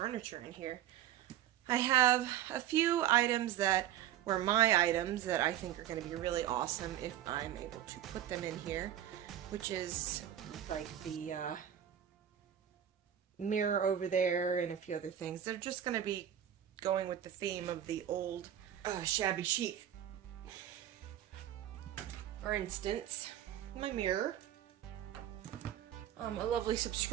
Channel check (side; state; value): left; quieter; 11.0 dB